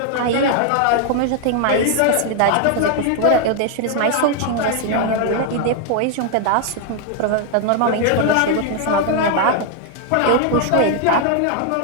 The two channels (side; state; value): both; different; correlation 0.00